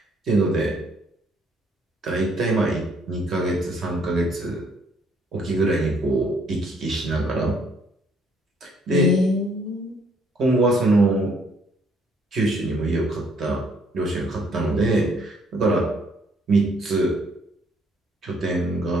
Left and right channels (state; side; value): normal; both; correlation 0.66